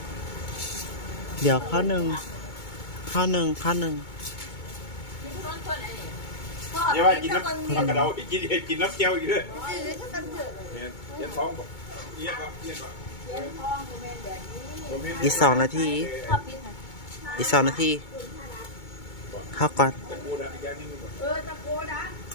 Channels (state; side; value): late; right; 2.2 ms